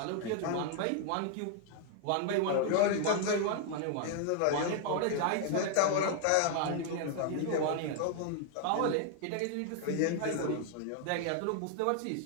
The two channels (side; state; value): both; different; correlation 0.00